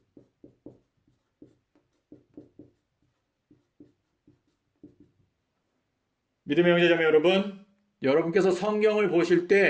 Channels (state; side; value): identical; both; correlation 1.00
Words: 믿음의 형제자매 여러분, 여러분께서 성경을 보실